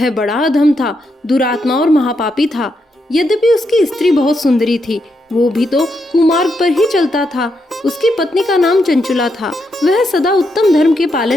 बड़ा अधम था, दुरात्मा और महापापी था। यद्यपि उसकी स्त्री बहुत सुंदरी थी, वो भी तो कुमार्ग पर ही चलता था। उसकी पत्नी का नाम चंचुला था। वह सदा उत्तम धर्म के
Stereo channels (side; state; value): both; normal; correlation 0.81